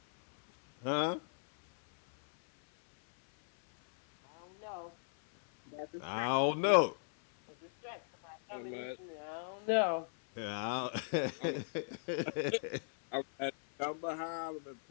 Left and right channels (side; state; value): right; silent; 53 dB below the other